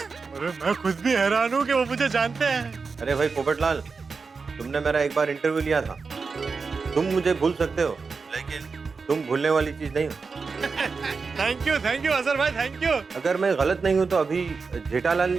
अरे मैं खुद भी हैरान हूँ कि वो मुझे जानते हैं। अरे भाई पोपटलाल, तुमने मेरा एक बार इंटरव्यू लिया था। तुम मुझे भूल सकते हो, लेकिन तुम भूलने वाली चीज नहीं हो। थैंक यू अजहर भाई, थैंक यू। अगर मैं गलत नहीं हूँ तो अभी जेठालाल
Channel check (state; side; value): quieter; left; 4.8 dB